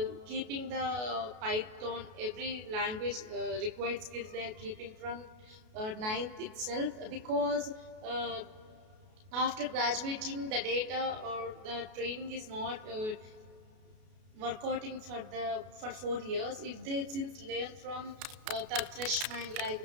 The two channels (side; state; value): left; late; 33 ms